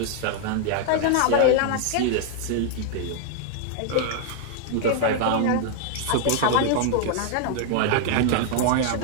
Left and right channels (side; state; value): both; different; correlation 0.00